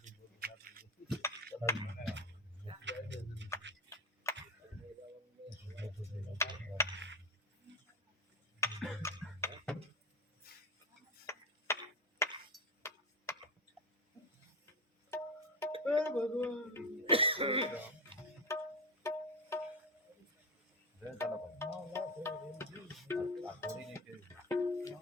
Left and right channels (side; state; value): both; normal; correlation 0.16